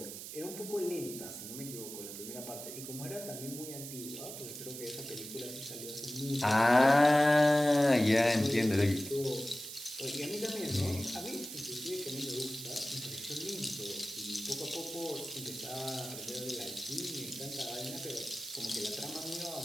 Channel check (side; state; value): right; noise; hiss, 9 dB below the sound